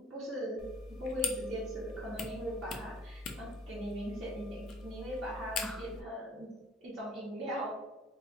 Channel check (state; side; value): normal; both; correlation 0.54